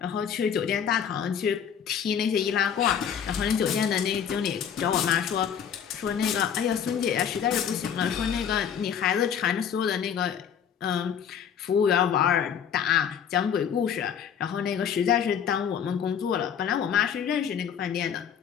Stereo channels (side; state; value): right; quieter; 8.1 dB